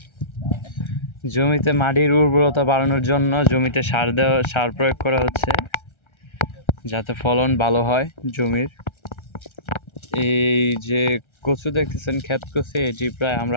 জমিতে মাটির উর্বরতা বাড়ানোর জন্য জমিতে সার প্রয়োগ করা হচ্ছে যাতে ফলন ভালো হয় জমির। এই যে কচু দেখতেছেন, ক্ষেত কচু, এটি প্রায় আমরা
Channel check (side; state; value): right; late; 1.3 ms